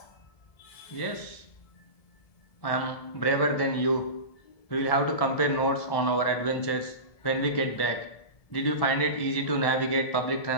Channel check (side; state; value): right; late; 1.7 ms